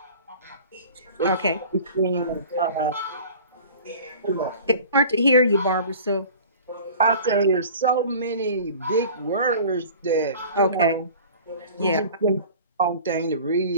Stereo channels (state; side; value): inverted; both; correlation -0.43